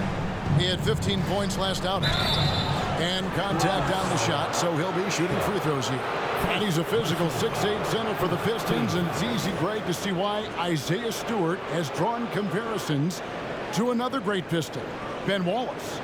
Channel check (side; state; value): both; identical; correlation 1.00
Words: He had 15 points last outing. And contact down the shot, so he'll be shooting free throws here. And he's a physical 6'8" center for the Pistons, and it's easy, Greg, to see why Isaiah Stewart has drawn comparisons to another great Piston, Ben Wallace.